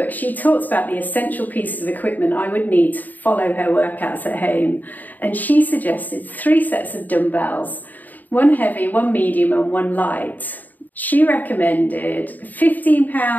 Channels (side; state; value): right; late; 0.084 ms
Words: she talks about the essential pieces of equipment I would need to follow her workouts at home, and she suggested 3 sets of dumbbells, 1 heavy, 1 medium and 1 light. She recommended